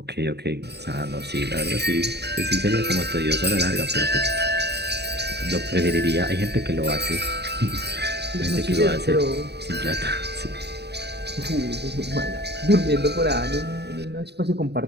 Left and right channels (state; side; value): late; left; 0.48 ms